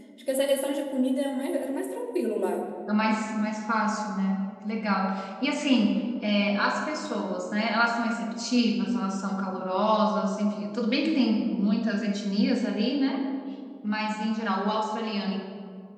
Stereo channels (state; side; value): identical; both; correlation 1.00